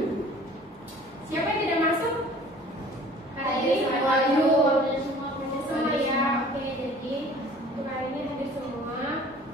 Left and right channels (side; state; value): both; normal; correlation 0.48